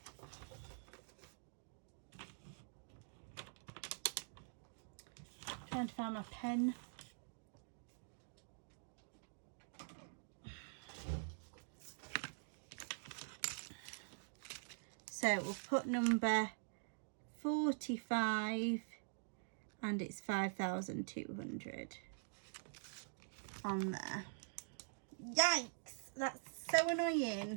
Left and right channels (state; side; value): silent; left; digital silence